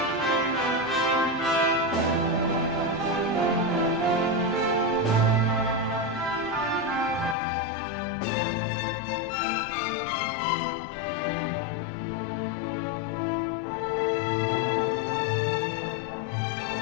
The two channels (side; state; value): right; drops out; at 7.4 s